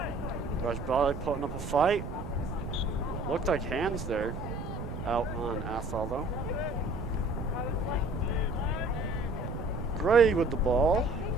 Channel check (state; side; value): noise; right; rumble, 7 dB below the sound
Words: Rajbali putting up a fight. Looked like hands there. Out on Athol though. Gray with the ball.